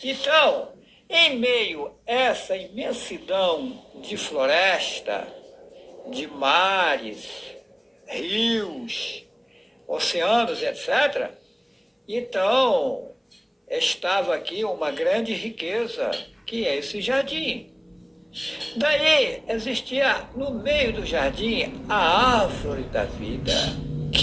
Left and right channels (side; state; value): both; identical; correlation 1.00